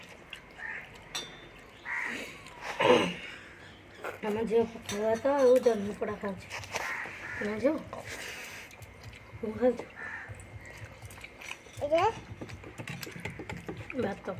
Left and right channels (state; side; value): identical; both; correlation 1.00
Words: ଆମ ଝିଅ ପଖାଳ ଭାତ ଆଉ ଜହ୍ନି ପୋଡ଼ା ଖାଉଛି ନା ଝିଅ ମୁଁ ଖାଉଛୁ ଭାତ